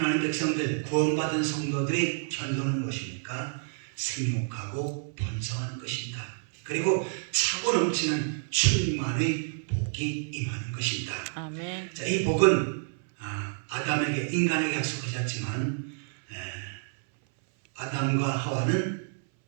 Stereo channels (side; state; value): left; silent; 59 dB below the other